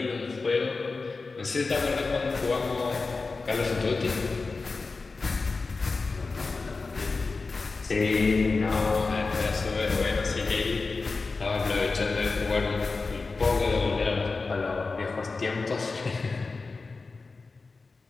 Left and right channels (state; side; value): quieter; right; 4.0 dB